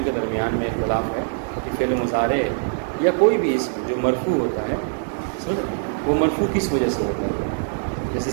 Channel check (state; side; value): silent; left; digital silence